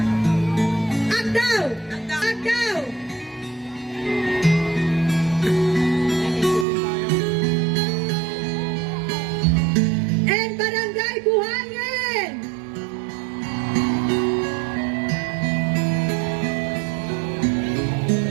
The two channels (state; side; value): drops out; left; at 6.7 s